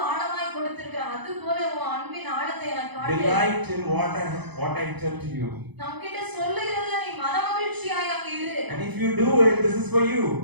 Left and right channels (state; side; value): late; left; 0.99 ms